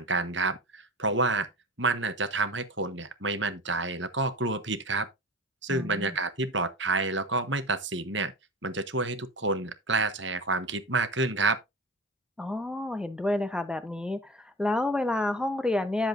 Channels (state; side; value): normal; both; correlation 0.33